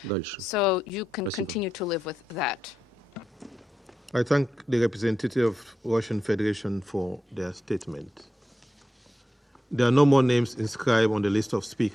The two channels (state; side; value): normal; both; correlation 0.88